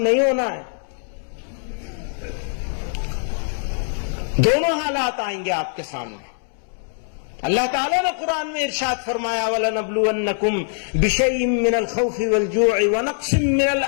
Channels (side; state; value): right; silent; 64 dB below the other